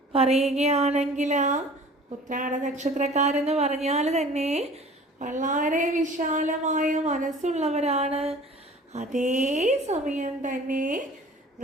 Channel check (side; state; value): both; normal; correlation 0.46